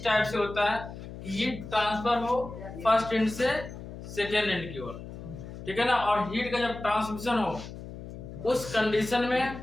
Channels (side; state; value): left; noise; hum, 12 dB below the sound